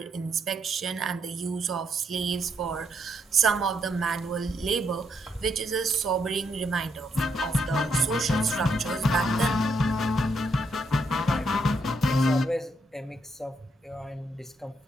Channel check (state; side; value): normal; both; correlation 0.76